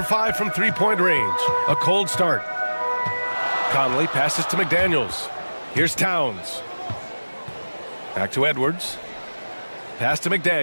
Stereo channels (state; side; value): inverted; both; correlation -1.00